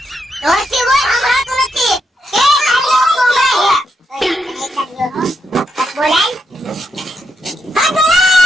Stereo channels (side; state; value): both; normal; correlation 0.81